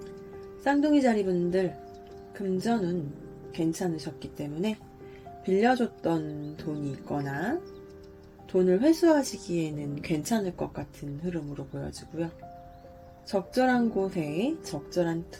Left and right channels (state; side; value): identical; both; correlation 1.00